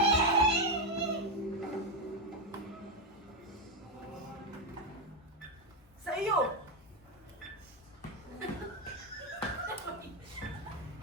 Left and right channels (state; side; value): normal; both; correlation 0.06